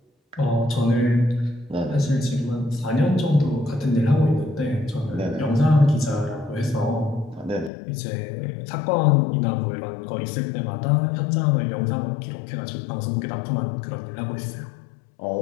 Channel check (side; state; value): right; drops out; at 7.7 s